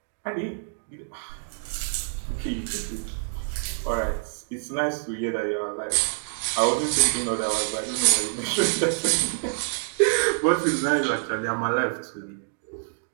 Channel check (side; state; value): left; silent; digital silence